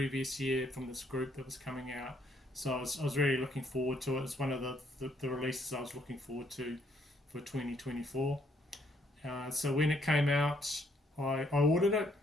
year from this group that was coming out. So I was really looking forward to it. It's one of the releases I was looking forward to for 2024. So when it came out, I ordered it.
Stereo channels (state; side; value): normal; both; correlation 0.70